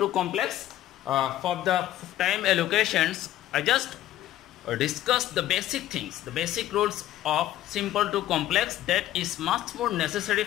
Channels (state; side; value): quieter; right; 13.5 dB